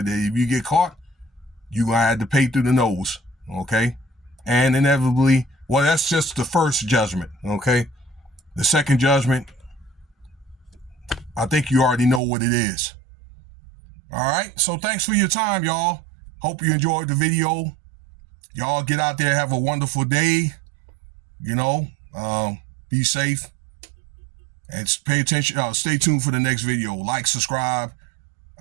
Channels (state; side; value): drops out; left; at 12.2 s